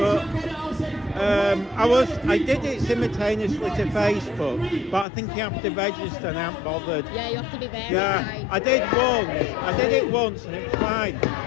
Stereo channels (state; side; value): drops out; right; at 5.1 s